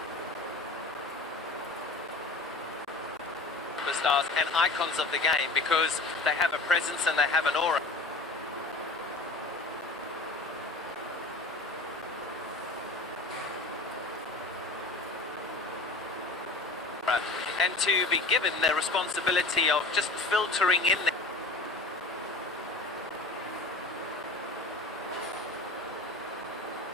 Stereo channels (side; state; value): right; quieter; 3.1 dB